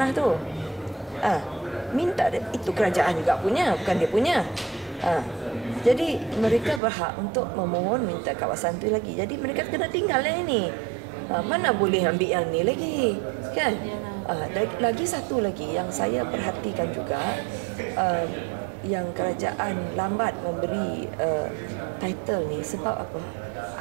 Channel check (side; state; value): left; drops out; at 6.8 s